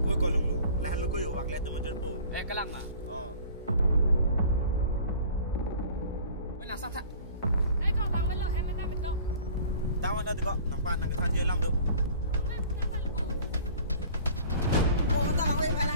Ko ko long lo. La lo ko yo wak la tum ajar po. Kalang ma. Oh. Nang sang tak. Ko bang me lo hem me ta me to. Tawan da ti ko nang pan nang ka than je lam do. Me ta ta lu. Oh, tak awak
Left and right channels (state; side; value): inverted; both; correlation -0.46